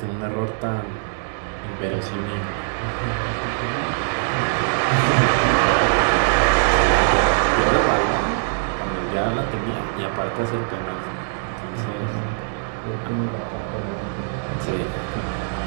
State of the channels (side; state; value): left; silent; digital silence